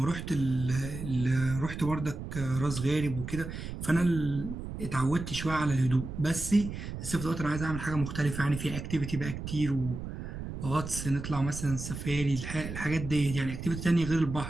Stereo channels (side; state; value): right; noise; rumble, 8 dB below the sound